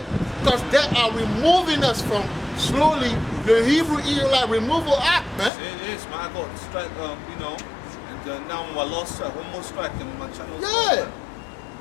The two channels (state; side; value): drops out; right; at 5.5 s